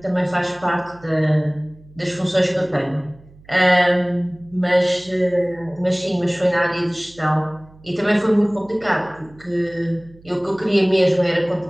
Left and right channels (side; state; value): right; noise; hum, 25 dB below the sound